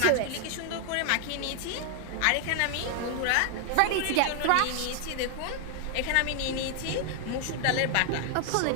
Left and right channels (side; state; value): both; different; correlation 0.00